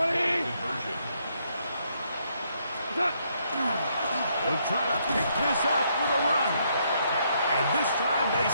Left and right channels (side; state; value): both; inverted; correlation -0.73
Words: conversion. They'll try to pick this up with a run. And this time they